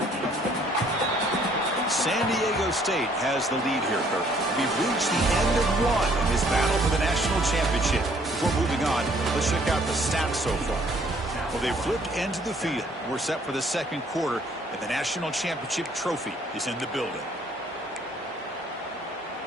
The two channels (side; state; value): both; normal; correlation 0.62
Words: San Diego State has the lead here, Kirk. We've reached the end of one in this battle for the national championship. Before moving on, let's check out the stats so far. Well, they've flipped into the field. We're set for the second quarter, and the national championship trophy is in the building.